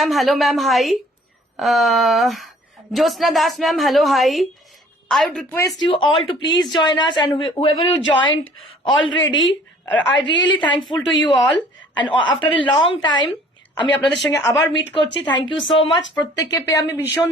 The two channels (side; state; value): both; normal; correlation 0.54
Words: hello ma'am, hi. Jyotsna Das ma'am, hello, hi. I would request you all to please join us, and whoever you joined already, I really thankful to you all, and after a long time আমি আপনাদের সঙ্গে আবার meet করছি। Thank you so much. প্রত্যেককে পেয়ে আমি ভীষণ